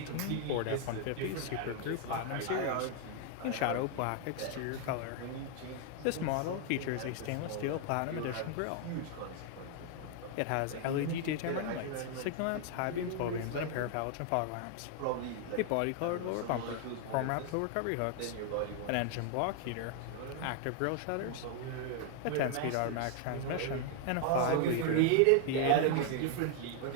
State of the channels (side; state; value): both; different; correlation 0.00